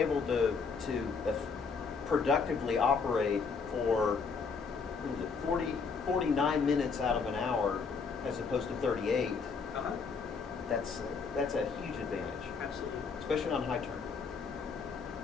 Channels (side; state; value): right; quieter; 5.2 dB